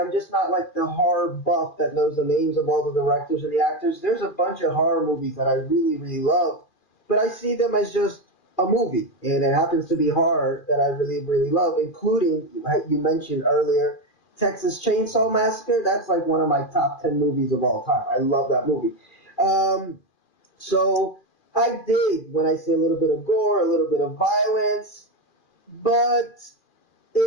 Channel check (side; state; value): right; late; 2.4 ms